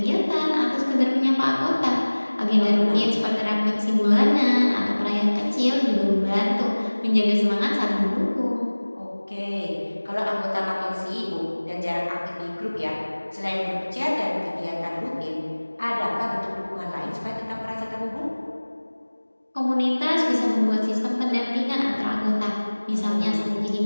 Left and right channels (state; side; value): inverted; both; correlation -1.00